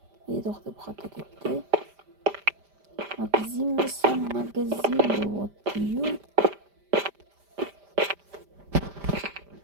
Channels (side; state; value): left; late; 5.0 ms